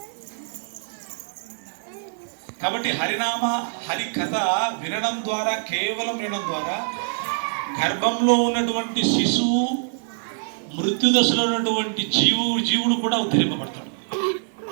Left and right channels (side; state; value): left; silent; 58 dB below the other